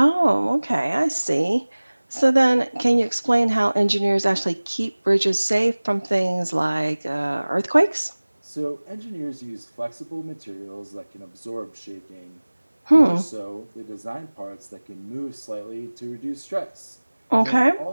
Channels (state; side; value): inverted; both; correlation -1.00